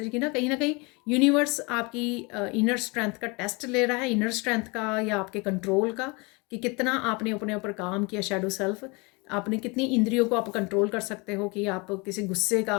कि ना कहीं यूनिवर्स आपकी इनर स्ट्रेंथ का टेस्ट ले रहा है, इनर स्ट्रेंथ का या आपके कंट्रोल का, कि कितना आपने अपने ऊपर काम किया, शैडो सेल्फ, आपने कितनी इंद्रियों को आप कंट्रोल कर सकते हो कि आप किसी गुस्से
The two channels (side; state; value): right; quieter; 28.2 dB